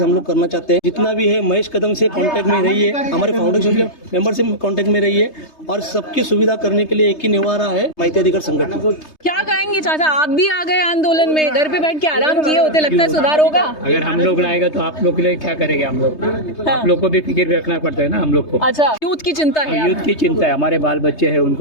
हम लोग करना चाहते हैं. जितना भी है महेश कदम से कांटेक्ट में रहिए, हमारे फाउंडेशन के मेंबर से कांटेक्ट में रहिए, और सबकी सुविधा करने के लिए एक ही निवारा है, माहिती अधिकार संगठन. क्या कहेंगे चाचा, आप भी आ गए आंदोलन में, घर पे बैठ के आराम किए होते, लगता है सुधार होगा? अगर हम लोग लाएगा तो आप लोग के लिए क्या करेंगे? हम लोग आप लोग को भी फिक्र रखना पड़ता है ना हम लोग को. अच्छा, यूथ की चिंता है. यूथ की चिंता है, हमारे बाल बच्चे हैं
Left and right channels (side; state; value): right; late; 3.3 ms